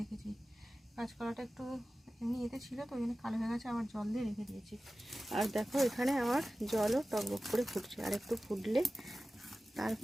কাঁচকলাটা একটু এমনি এতে ছিল তো, ওই জন্য কালো হয়ে গেছে, আবার জল দিয়ে রেখে দিয়েছি। আর দেখো এখানে আমার জলও টকবক করে ফুটছে, আর একটু ফুটলে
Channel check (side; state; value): both; normal; correlation 0.95